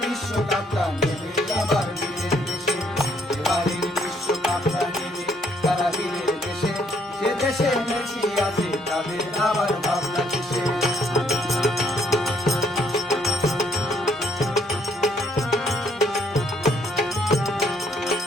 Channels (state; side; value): normal; both; correlation 0.69